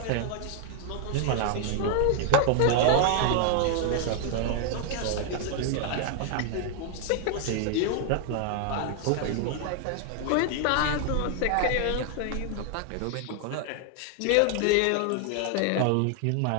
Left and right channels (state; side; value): different; both; correlation 0.00